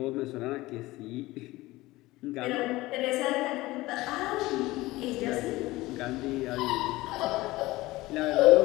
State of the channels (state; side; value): quieter; right; 19.1 dB